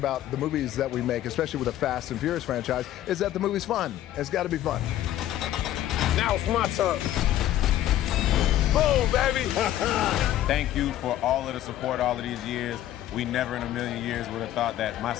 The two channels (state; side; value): quieter; right; 12.8 dB